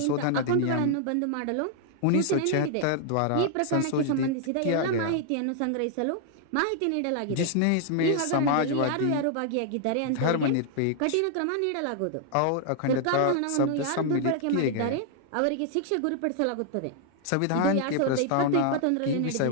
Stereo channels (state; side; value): different; both; correlation 0.00